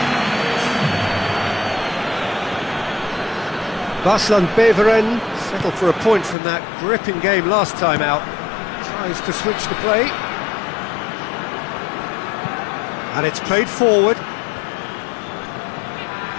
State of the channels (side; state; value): right; drops out; at 6.4 s